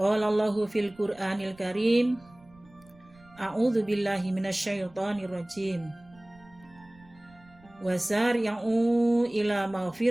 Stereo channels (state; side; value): noise; right; rumble, 27 dB below the sound